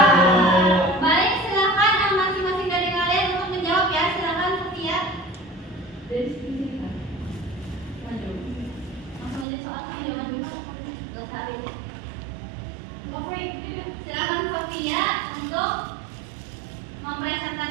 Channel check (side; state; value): left; drops out; at 9.5 s